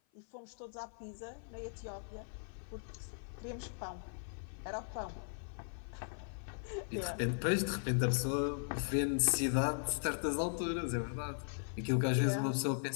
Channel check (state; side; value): silent; right; 52 dB below the other